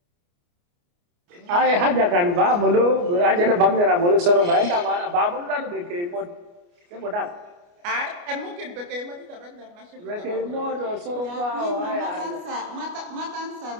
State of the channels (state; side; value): late; left; 29 ms